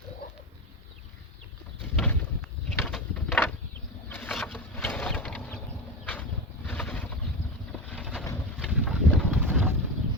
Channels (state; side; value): normal; both; correlation 0.20